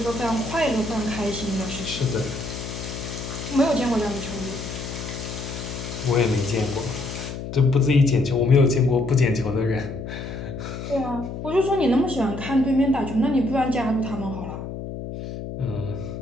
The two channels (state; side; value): noise; left; hum, 8 dB below the sound